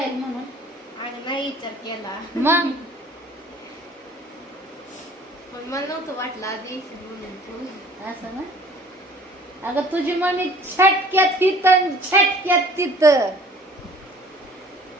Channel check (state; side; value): normal; both; correlation 0.51